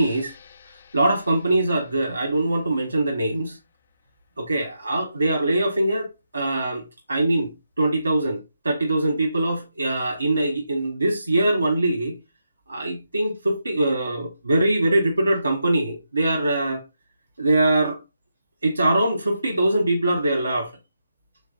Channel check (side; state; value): both; inverted; correlation -0.84